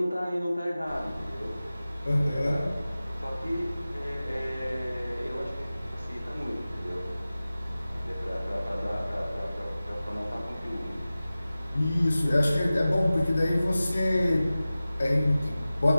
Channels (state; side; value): inverted; both; correlation -0.96